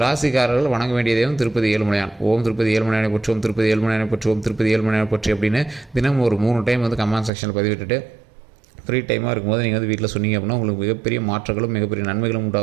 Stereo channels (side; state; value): left; drops out; at 7.3 s